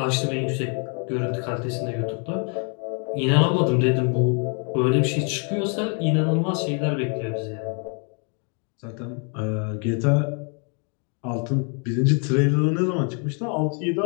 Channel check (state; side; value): quieter; right; 38.9 dB